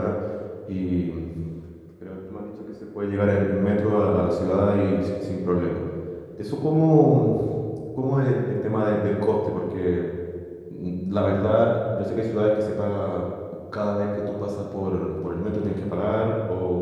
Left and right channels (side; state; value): both; identical; correlation 1.00